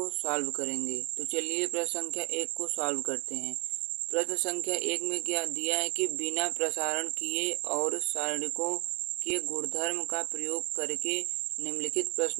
सॉल्व करेंगे। तो चलिए प्रश्न संख्या 1 को सॉल्व करते हैं। प्रश्न संख्या 1 में क्या दिया है कि बिना प्रसारण किए और सारणिकों के गुणधर्म का प्रयोग करके निम्नलिखित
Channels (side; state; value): left; quieter; 28.3 dB